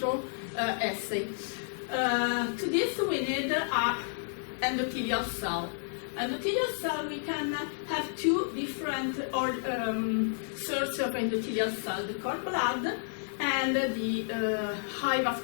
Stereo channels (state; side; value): silent; right; digital silence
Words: assay. To this we need an endothelial cell. Endothelial cell, we can have two different sources of endothelial cell, the cord blood and the high